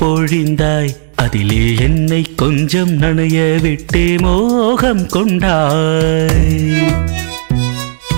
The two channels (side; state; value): left; silent; digital silence